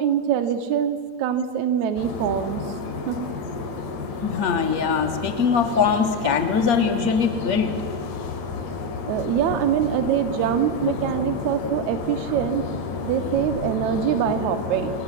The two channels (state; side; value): late; left; 8.5 ms